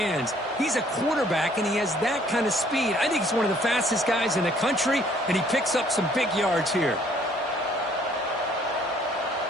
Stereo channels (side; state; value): both; normal; correlation 0.61